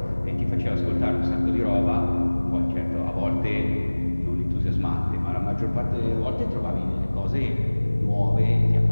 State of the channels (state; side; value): inverted; both; correlation -1.00